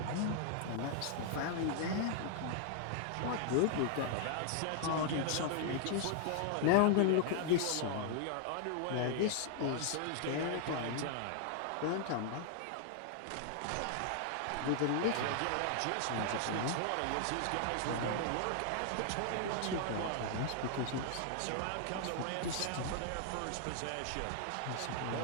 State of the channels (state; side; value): different; both; correlation 0.00